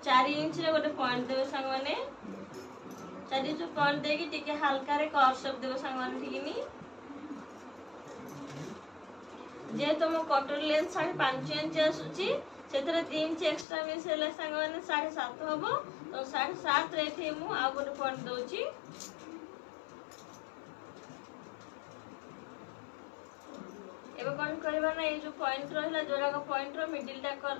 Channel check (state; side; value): drops out; right; at 13.7 s